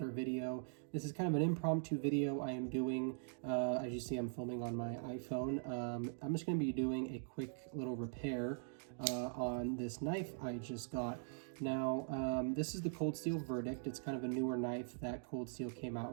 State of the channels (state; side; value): silent; left; digital silence